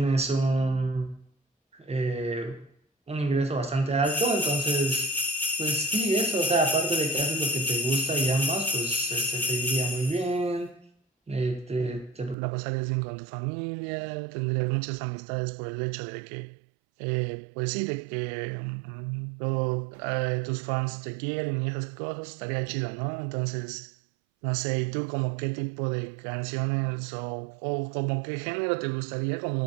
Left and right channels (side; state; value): left; drops out; at 12.4 s